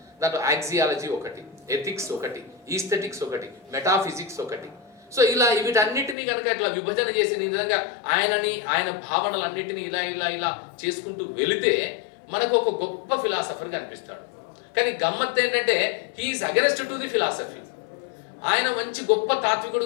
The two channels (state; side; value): drops out; right; at 6.2 s